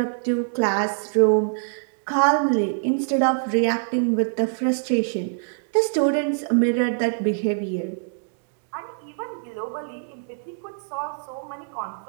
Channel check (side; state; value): left; silent; digital silence